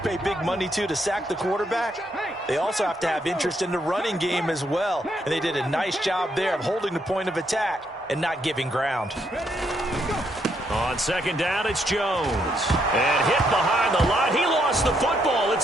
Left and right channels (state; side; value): normal; both; correlation 0.75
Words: big money to sack the quarterback, they also have to have interest in the running game as well. And they did a nice job there of holding the point of attack and not giving ground. On 2nd down, it's Jones. And hit behind the line. He lost the football.